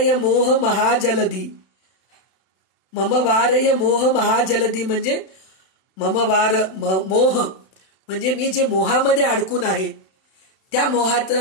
मोह महाजलधी, मम वारय मोह महाजलधी म्हणजे मोह म्हणजे मी जे मोहामध्ये अडकून आहे त्या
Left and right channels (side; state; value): right; late; 32 ms